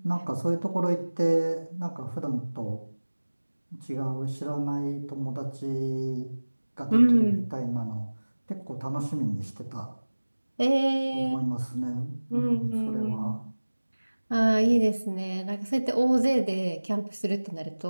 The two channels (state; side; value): inverted; both; correlation -1.00